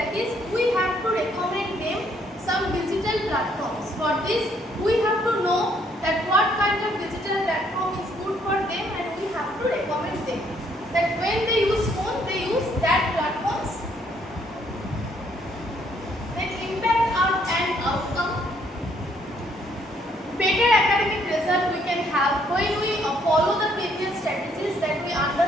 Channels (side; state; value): both; normal; correlation 0.68